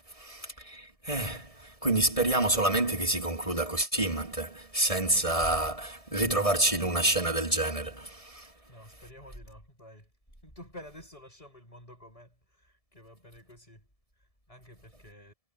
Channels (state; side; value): late; right; 1.7 ms